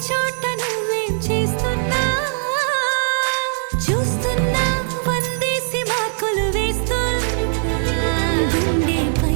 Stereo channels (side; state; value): left; silent; digital silence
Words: చోట నువ్వేం చేస్తున్నా చూస్తున్నా వందేసి మార్కులు వేస్తున్నా